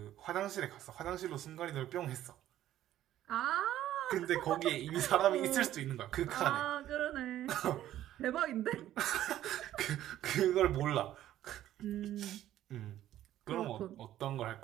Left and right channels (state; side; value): quieter; left; 12.8 dB